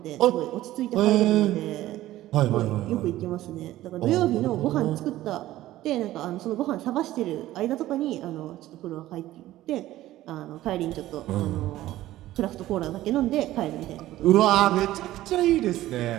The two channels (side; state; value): left; quieter; 15.1 dB